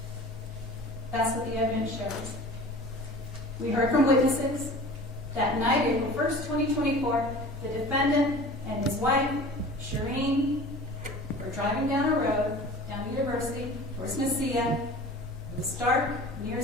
That's what the evidence shows. We heard from witnesses that night, April 1st, 2024, the defendant and his wife, Shireen, were driving down a road, down University, towards Mesilla. It was dark, near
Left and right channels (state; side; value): normal; both; correlation 0.40